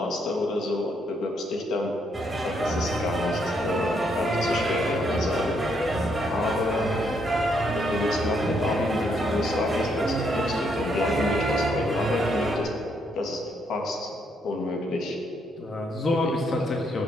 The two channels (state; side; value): normal; both; correlation 0.74